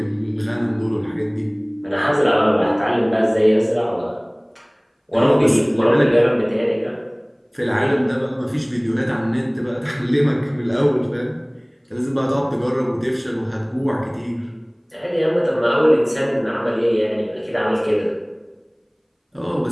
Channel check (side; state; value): both; identical; correlation 1.00